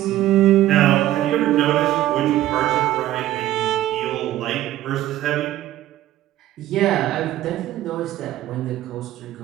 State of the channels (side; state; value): left; quieter; 14.2 dB